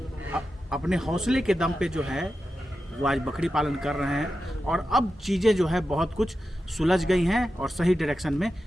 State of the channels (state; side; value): normal; both; correlation 0.91